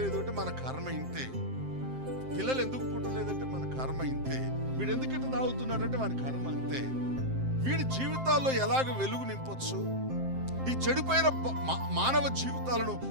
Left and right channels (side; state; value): left; late; 7.6 ms